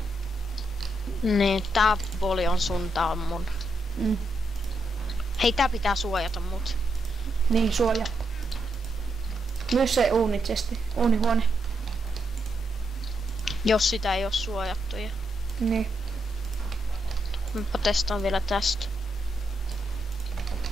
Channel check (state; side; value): normal; both; correlation 0.81